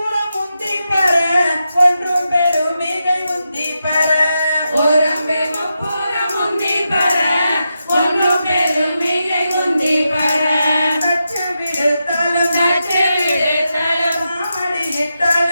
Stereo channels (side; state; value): both; inverted; correlation -0.87